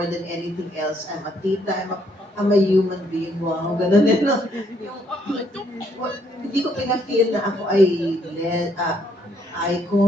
than anything else. I'm a tita, I'm a human being. Wow, ganun din, no? Hindi ko pina-feel na ako ay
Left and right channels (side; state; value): both; normal; correlation 0.70